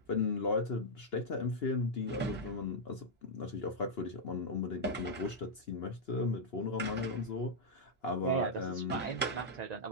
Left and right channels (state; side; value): normal; both; correlation -0.06